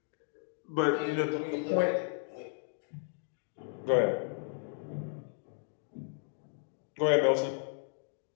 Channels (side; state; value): right; silent; 55 dB below the other